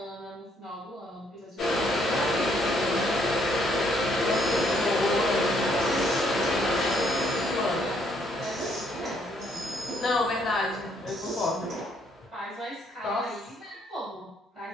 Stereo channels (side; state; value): both; normal; correlation 0.69